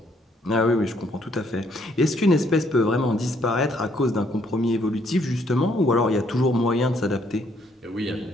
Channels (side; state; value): both; normal; correlation 0.68